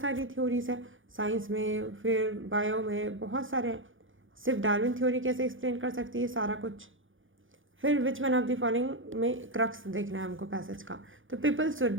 सारी थ्योरीज है साइंस में, फिर बायो में बहुत सारे, सिर्फ डार्विन थ्योरी कैसे एक्सप्लेन कर सकती है सारा कुछ। फिर which one of the following में क्रक्स देखना है हमको पैसेज का। तो people should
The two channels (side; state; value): left; late; 0.58 ms